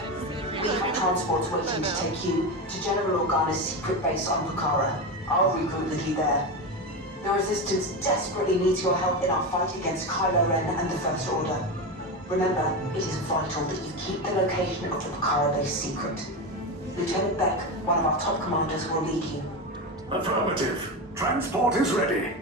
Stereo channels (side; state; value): both; normal; correlation 0.18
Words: We have transports waiting to take you to General Organa's secret base on Pucara. I'll regroup with you there. The Resistance desperately needs your help in our fight against Kyloren and the First Order. Remember, it is vital that you keep the location of the Pucara base secret. Lieutenant Beck, one of our top commanders, will lead you. Affirmative. Transport is ready.